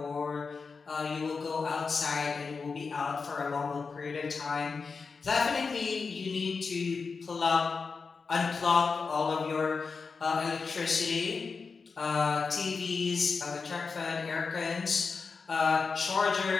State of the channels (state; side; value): quieter; right; 4.9 dB